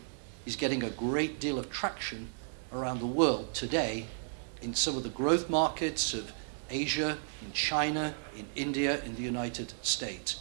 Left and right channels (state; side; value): silent; left; 55 dB below the other